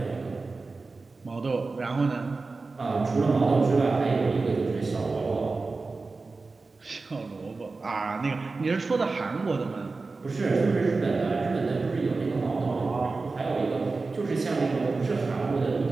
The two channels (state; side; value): quieter; left; 3.9 dB